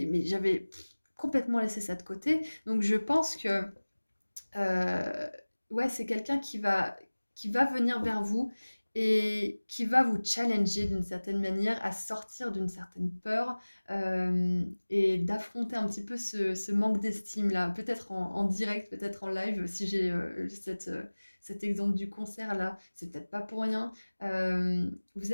j'avais complètement laissé ça de côté. Donc je pense que ouais, c'est quelqu'un qui va venir vers vous et qui va vous challenger d'une certaine manière à sortir d'une certaine peur, et d'affronter un petit peu ce manque d'estime-là. Peut-être en direct, peut-être en live, si j'ai cet exemple du concert là, c'est peut-être pas pour rien. Vous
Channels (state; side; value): inverted; both; correlation -1.00